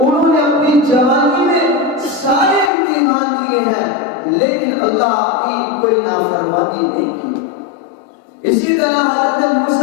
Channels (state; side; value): drops out; right; at 2.7 s